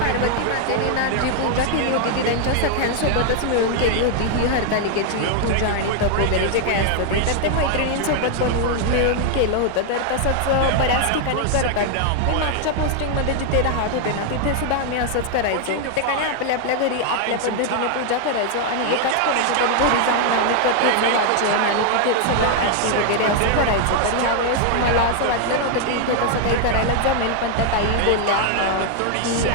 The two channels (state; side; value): different; both; correlation 0.00